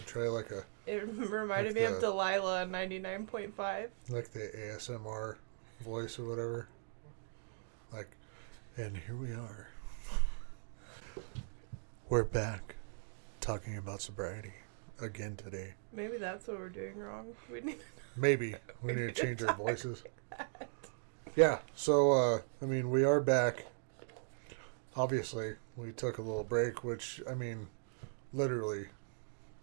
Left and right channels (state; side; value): silent; left; digital silence